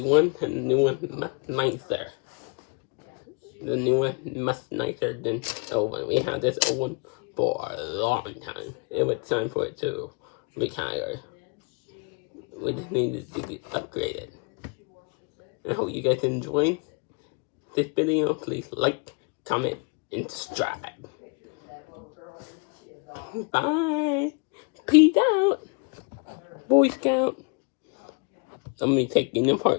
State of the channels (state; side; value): quieter; right; 33.2 dB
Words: one, and the new one much nicer. The new one much nicer than the old one. We had this old one for a long time. It was time for it to retire. We just needed to get upgraded. I hope you guys enjoyed this video. Please like, comment, and stride. Bye. Peace out, Boy Scout. I'm gonna take taking